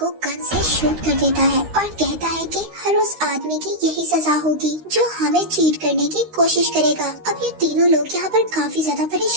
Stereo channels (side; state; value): left; late; 13 ms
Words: गन से शूट कर देता है और कहता है कि हर उस आदमी की यही सजा होगी जो हमें चीट करने की कोशिश करेगा। अब ये तीनों लोग यहाँ पर काफी ज्यादा